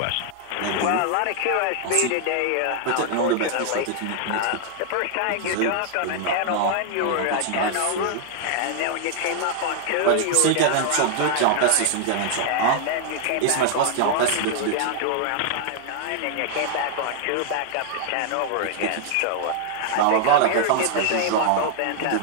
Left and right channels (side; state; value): both; different; correlation 0.00